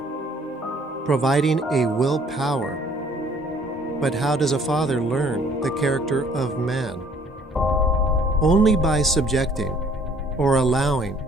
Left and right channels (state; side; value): normal; both; correlation 0.58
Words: providing a will power. But how does a father learn the character of man? Only by subjecting or allowing